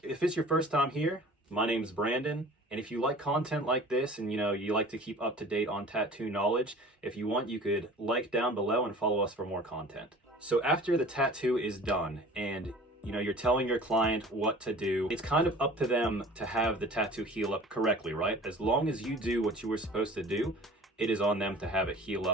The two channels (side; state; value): both; normal; correlation 0.44